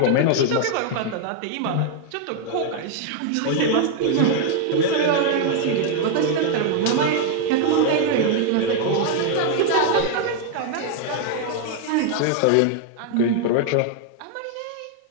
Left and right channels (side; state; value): both; different; correlation 0.00